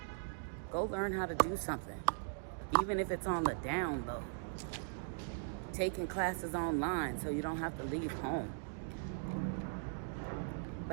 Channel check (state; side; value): silent; left; digital silence